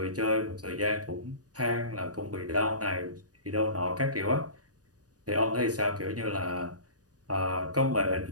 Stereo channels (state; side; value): late; left; 0.68 ms